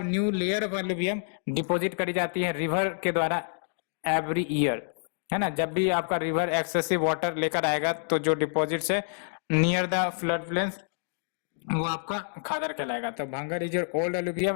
new layer of alluvium deposit करी जाती है रिवर के द्वारा एवरी ईयर, है ना। जब भी आपका रिवर एक्सेसिव वाटर लेकर आएगा तो जो डिपॉजिट है नियर द फ्लड प्लेन्स वो आपका खादर कहलाएगा। तो Bhangar is your old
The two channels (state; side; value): silent; right; digital silence